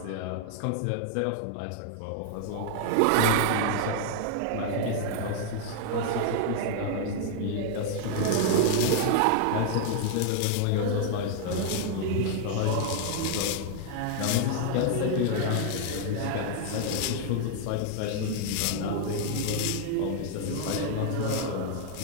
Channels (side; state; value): both; different; correlation 0.00